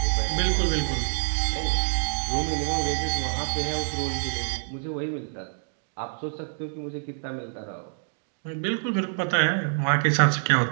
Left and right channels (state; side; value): silent; left; digital silence